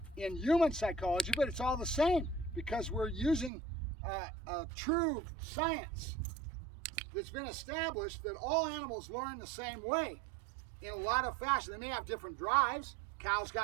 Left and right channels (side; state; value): left; drops out; at 3.5 s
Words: in human psychology, but it's all the same because we're using a true science that's been established that all animals learn the same way in a lot of fashion. They may have different drives. Cow's